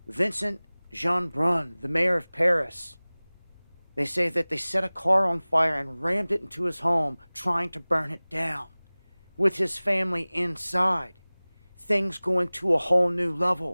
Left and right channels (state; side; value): inverted; both; correlation -1.00